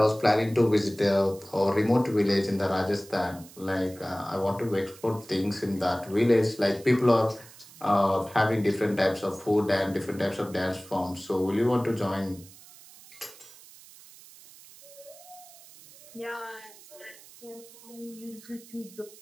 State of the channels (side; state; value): right; noise; hiss, 21 dB below the sound